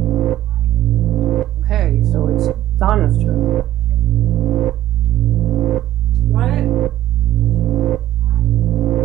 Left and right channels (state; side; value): quieter; left; 13.5 dB